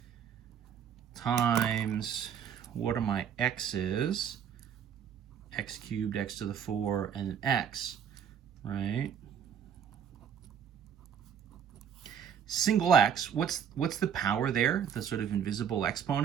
Times, what are my x's? X cubed, x to the 4, and an x, right? Single x, what's the power there? The sort of invisible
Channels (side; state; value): left; quieter; 8.2 dB